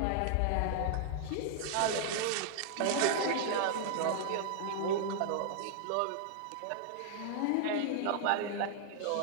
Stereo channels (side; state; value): both; different; correlation -0.01